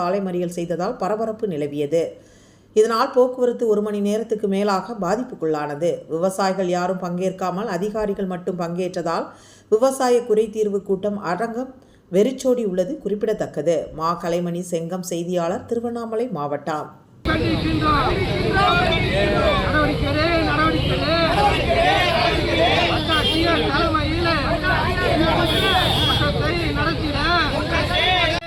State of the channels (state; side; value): identical; both; correlation 1.00